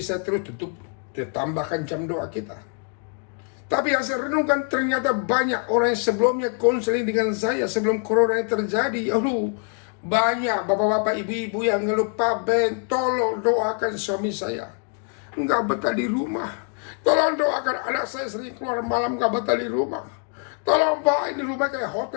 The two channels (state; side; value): quieter; right; 39.3 dB